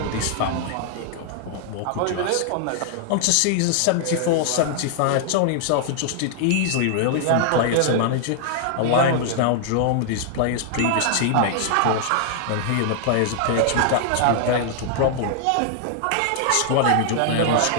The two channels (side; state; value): both; different; correlation -0.01